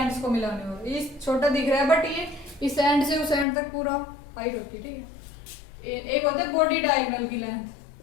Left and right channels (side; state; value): right; drops out; at 3.5 s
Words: को मिलाने वाला, ये छोटा दिख रहा है बट ये इस एंड से उस एंड तक पूरा हाइट होती है, ठीक है। एक होता है बॉडी डायगोनल की लेंथ,